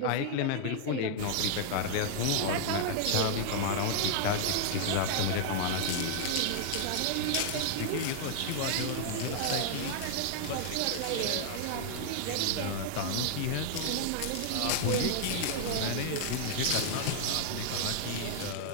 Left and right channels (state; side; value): different; both; correlation -0.01